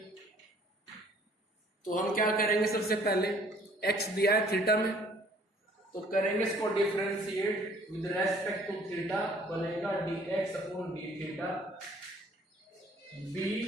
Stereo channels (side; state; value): both; normal; correlation 0.57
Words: तो हम क्या करेंगे, सबसे पहले x दिया है थीटा में, तो करेंगे इसको differentiate with respect to theta, बनेगा dx upon d theta. b